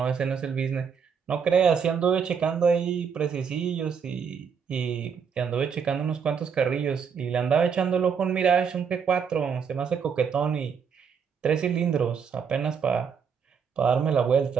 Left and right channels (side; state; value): left; quieter; 6.6 dB